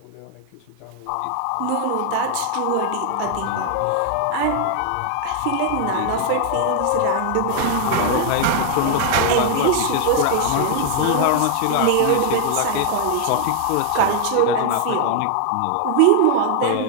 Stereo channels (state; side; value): different; both; correlation 0.00